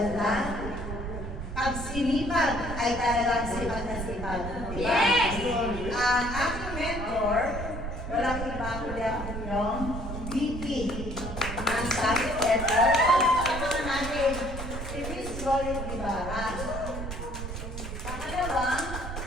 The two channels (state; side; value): noise; right; rumble, 6 dB below the sound